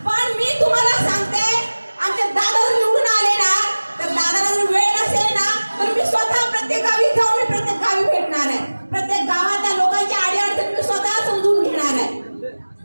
पण मी तुम्हाला सांगते, आमचे दादा जर निवडून आले ना तर दादाला जर वेळ नसेल ना तर मी स्वतः प्रत्येक गावी जाऊन मी प्रत्येक गावी भेटणार आहे. प्रत्येक गावातल्या लोकांची अडीअडचण मी स्वतः समजून घेणार आहे.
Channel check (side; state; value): both; inverted; correlation -1.00